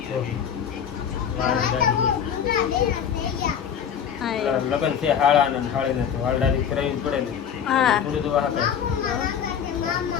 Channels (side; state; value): right; quieter; 8.2 dB